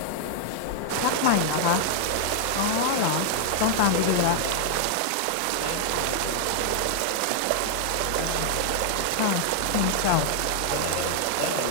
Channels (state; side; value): different; both; correlation 0.00